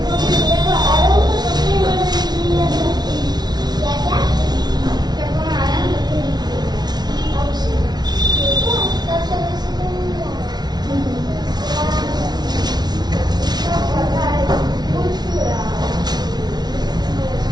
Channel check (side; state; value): left; late; 0.19 ms